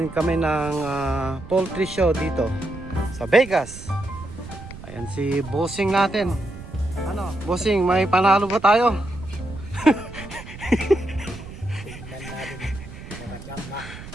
kami ng poultry show dito sa Vegas. Ayan si Bossing natin. Ano? Bossing, may panalo ba tayo?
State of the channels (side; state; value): right; noise; rumble, 13 dB below the sound